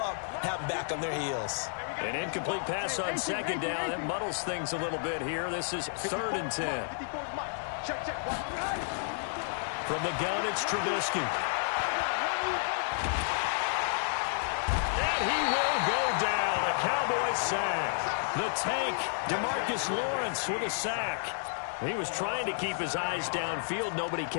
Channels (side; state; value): right; silent; digital silence